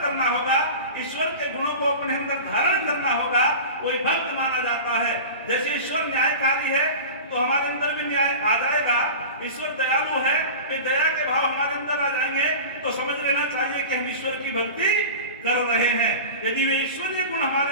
करना होगा, ईश्वर के गुणों को अपने अंदर धारण करना होगा, कोई भक्त माना जाता है। जैसे ईश्वर न्यायकारी है तो हमारे अंदर भी न्याय आ जाएगा। ईश्वर दयालु है, वे दया के भाव हमारे अंदर आ जाएंगे तो समझ लेना चाहिए कि हम ईश्वर की भक्ति कर रहे हैं। यदि वे ईश्वरीय गुण हमारे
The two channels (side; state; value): both; inverted; correlation -0.33